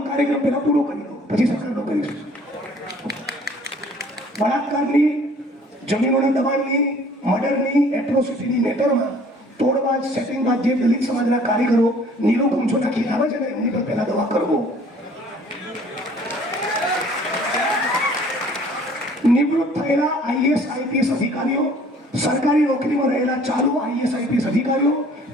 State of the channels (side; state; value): both; normal; correlation 0.54